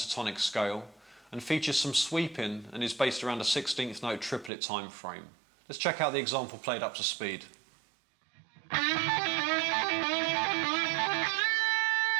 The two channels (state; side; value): drops out; left; at 4.5 s